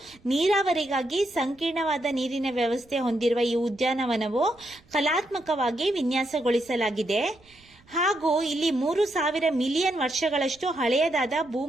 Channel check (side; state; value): right; noise; rumble, 29 dB below the sound